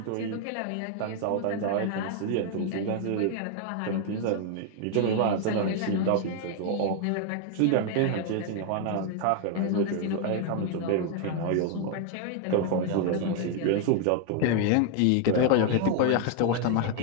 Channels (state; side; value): different; both; correlation 0.00